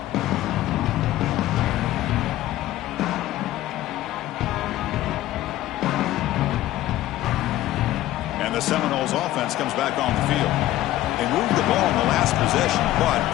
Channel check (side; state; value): right; quieter; 14.9 dB